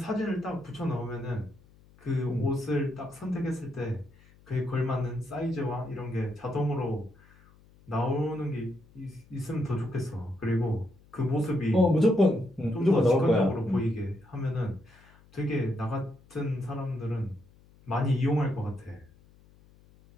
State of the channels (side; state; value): left; noise; hum, 27 dB below the sound